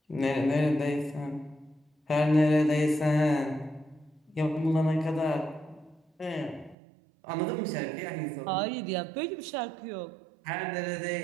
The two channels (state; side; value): drops out; left; at 6.8 s